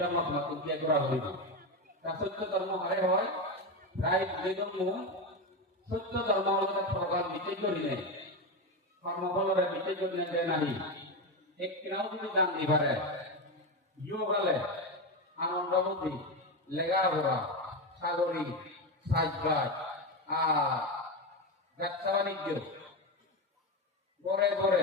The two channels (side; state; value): both; normal; correlation 0.14